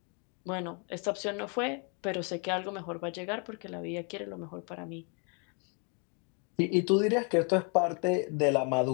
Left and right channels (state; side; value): quieter; right; 37.5 dB